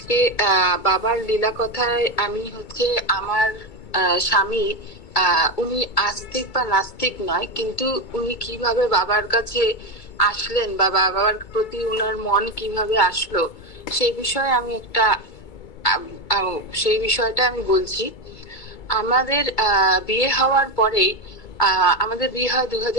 বাবার লীলা কথায় আমি আমার স্বামী, উনি আস্তিক বা নাস্তিক নয়, কিন্তু উনি কিভাবে বাবার কাছে আসলেন বা বাবার প্রতি উনার মন কিভাবে আসলো সেই বিষয়ে আমি একটা সেই বিষয়টা আমি বলছি। আমাদের বিয়ে হওয়ার পরেই আমাদের বিয়ে হয়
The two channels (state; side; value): late; right; 2.3 ms